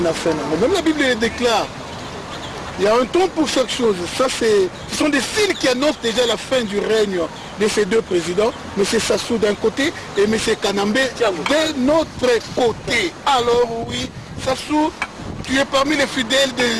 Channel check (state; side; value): identical; both; correlation 1.00